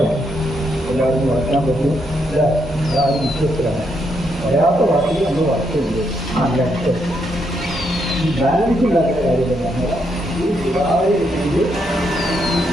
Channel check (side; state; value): both; normal; correlation 0.78